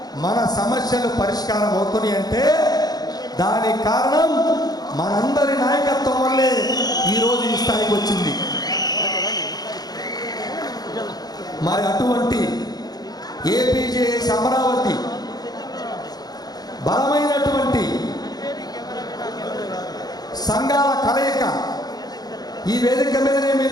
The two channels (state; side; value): late; right; 0.19 ms